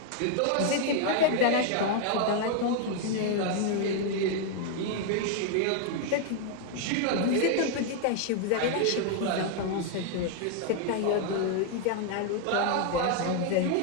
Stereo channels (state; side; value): different; both; correlation 0.00